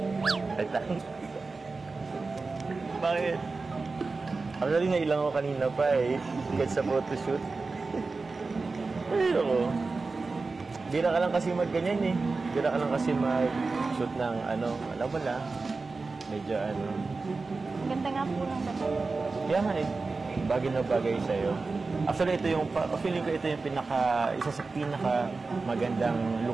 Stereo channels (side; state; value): left; quieter; 3.9 dB